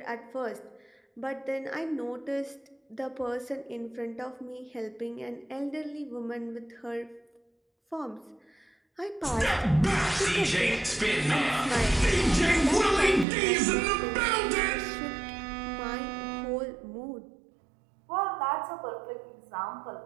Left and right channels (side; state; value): left; drops out; at 13.2 s